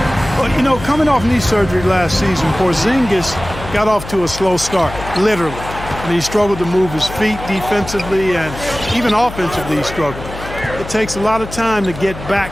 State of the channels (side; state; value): left; noise; hum, 12 dB below the sound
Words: Well, you know, coming off knee surgery last season, Porzingis got off to a slow start, literally. And he struggled to move his feet defensively, and even offensively he struggled. It takes a lot of time to get